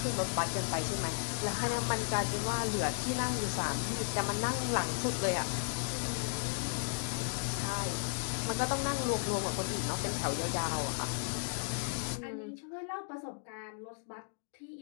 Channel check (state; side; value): silent; right; digital silence